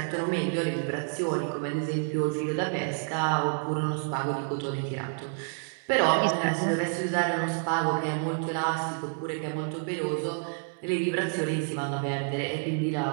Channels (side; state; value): left; silent; 59 dB below the other